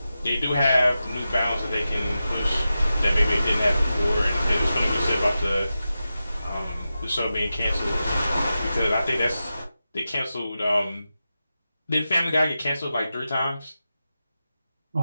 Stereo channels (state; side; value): inverted; both; correlation -0.92